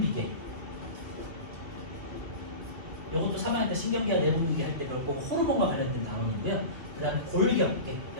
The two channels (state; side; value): late; left; 2.8 ms